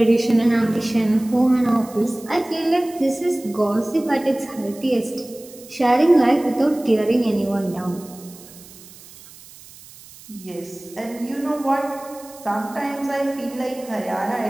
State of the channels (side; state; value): right; noise; hiss, 20 dB below the sound